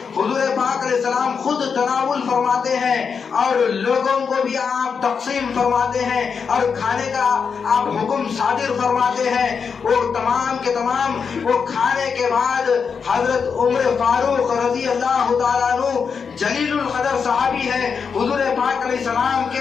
حضور پاک علیہ السلام خود تناول فرماتے ہیں اور لوگوں کو بھی آپ تقسیم فرماتے ہیں اور کھانے کا آپ حکم صادر فرماتے ہیں۔ وہ تمام کے تمام وہ کھانے کے بعد حضرت عمر فاروق رضی اللہ تعالیٰ عنہ جلیل القدر صحابی ہے، حضور پاک علیہ السلام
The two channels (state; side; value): quieter; right; 6.0 dB